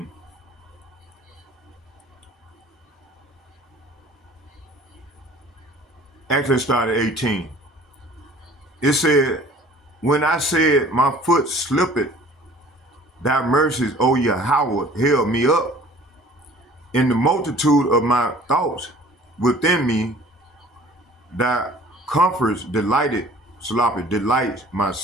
Actually, start at 18. It said, when I said my foot slipped, thy mercies, O Yahweh, held me up. In the multitude of my thoughts within me, thy comforts delights my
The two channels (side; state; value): both; normal; correlation 0.49